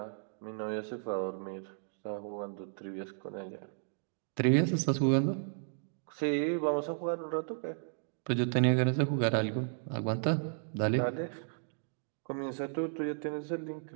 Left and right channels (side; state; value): left; silent; digital silence